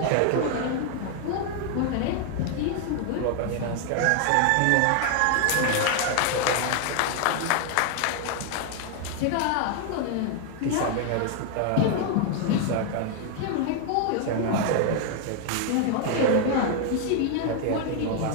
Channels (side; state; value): both; different; correlation 0.00